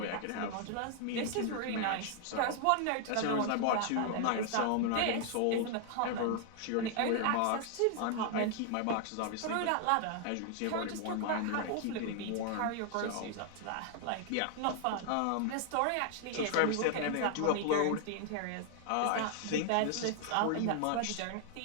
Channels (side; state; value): both; different; correlation 0.00